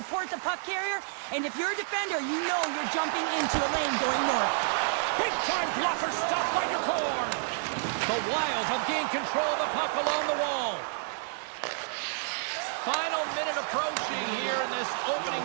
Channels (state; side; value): silent; left; 58 dB below the other